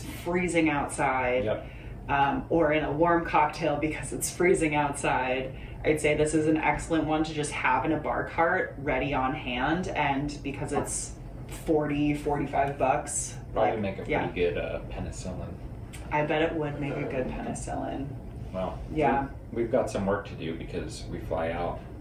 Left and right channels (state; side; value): identical; both; correlation 1.00